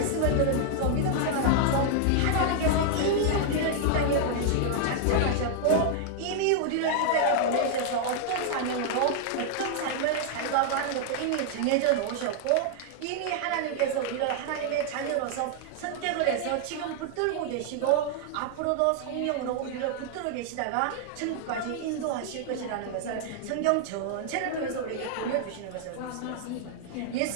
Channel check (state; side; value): different; both; correlation 0.00